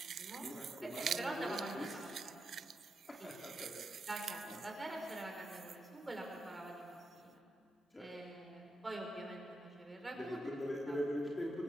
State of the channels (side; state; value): both; normal; correlation 0.85